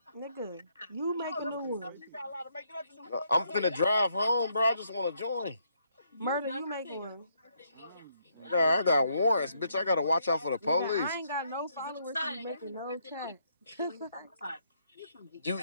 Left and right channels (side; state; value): both; inverted; correlation -0.73